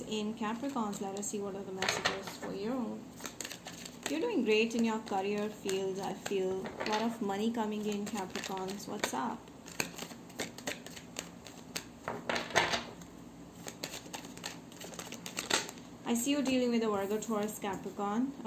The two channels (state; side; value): identical; both; correlation 1.00